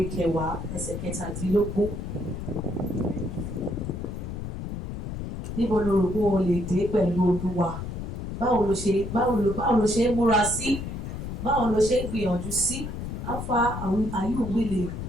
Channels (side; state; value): left; noise; rumble, 6 dB below the sound